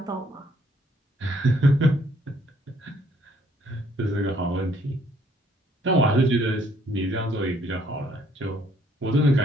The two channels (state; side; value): normal; both; correlation 0.65